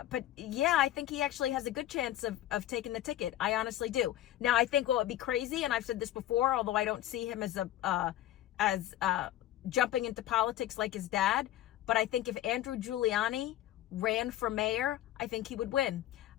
but yeah, I think he actually has a good chance of taking the ticket. I honestly do. Now, I think what would be crazy, and I've said this before, although I don't see him as jumping into politics like his dad, but I think if Andrew Giuliani ran for mayor, I think he would win.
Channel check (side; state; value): right; quieter; 13.3 dB